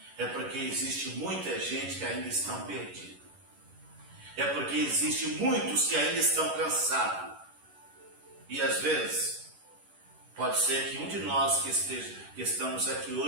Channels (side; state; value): left; late; 11 ms